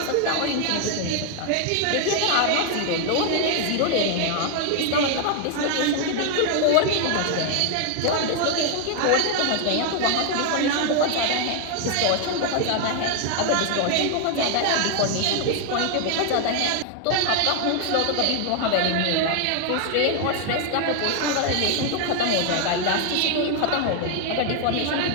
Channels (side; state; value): both; different; correlation 0.00